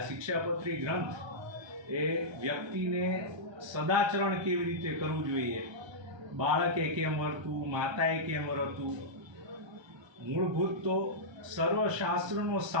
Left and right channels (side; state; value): left; late; 1.3 ms